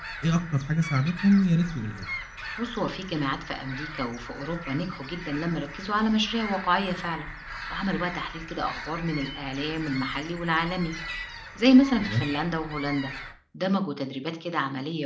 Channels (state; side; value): identical; both; correlation 1.00